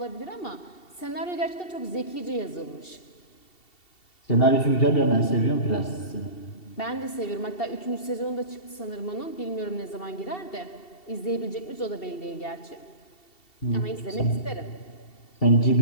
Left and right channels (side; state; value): right; late; 2.7 ms